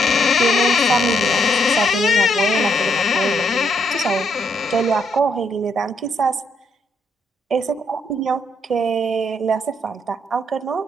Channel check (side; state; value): both; normal; correlation 0.74